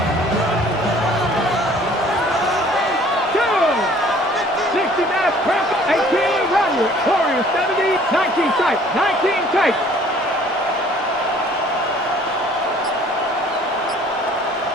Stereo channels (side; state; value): both; normal; correlation 0.54